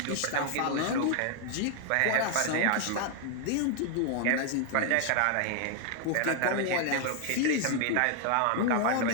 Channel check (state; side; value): different; both; correlation 0.00